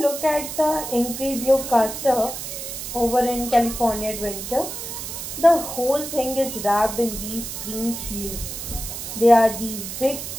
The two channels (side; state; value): right; noise; hiss, 7 dB below the sound